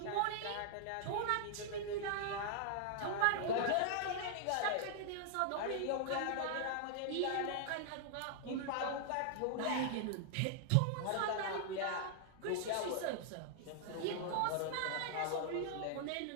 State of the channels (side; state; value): both; different; correlation -0.01